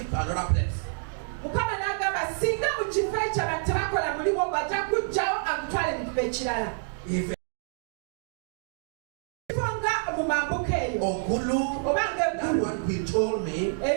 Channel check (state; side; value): silent; left; digital silence